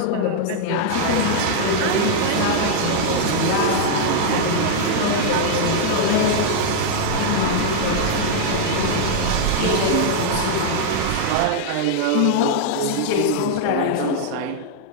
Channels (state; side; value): different; both; correlation -0.01